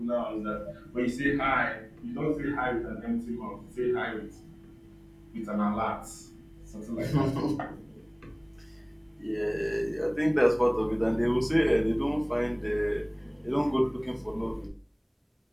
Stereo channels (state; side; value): identical; both; correlation 1.00